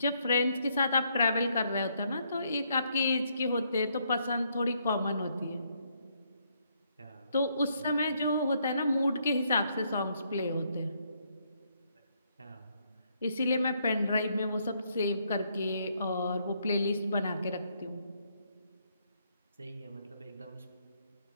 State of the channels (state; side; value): inverted; both; correlation -0.73